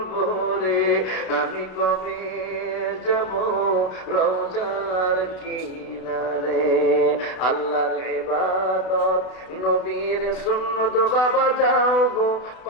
ভরে, আমি কবে যাব রওজার কিনারে। আল্লাহর ইবাদত নবীর সুন্নত বাবা যাও গো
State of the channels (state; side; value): late; right; 32 ms